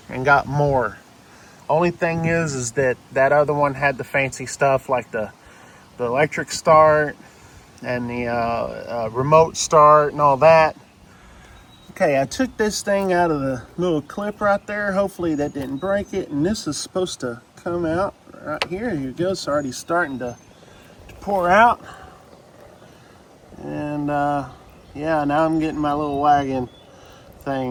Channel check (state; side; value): identical; both; correlation 1.00